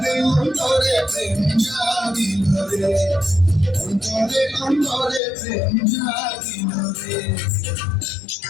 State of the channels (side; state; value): right; drops out; at 5.2 s